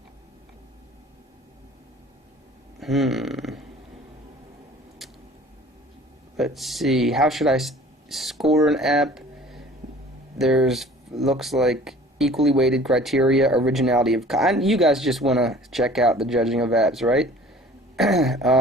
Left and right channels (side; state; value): both; normal; correlation 0.47